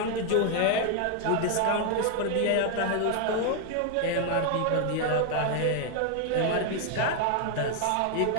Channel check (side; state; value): both; different; correlation 0.00